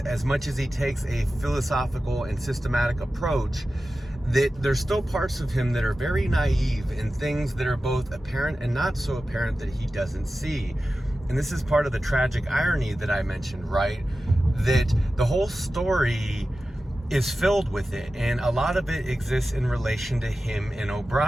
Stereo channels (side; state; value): both; normal; correlation 0.94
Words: much as he takes a philosophical and systematic approach, that there's still parts of him that are very naive and things that are both apparent and not so apparent that he doesn't see. And this is part of the tragic irony that I mentioned, right? That the whole story is filled with it, and a lot of it exists in relation to him and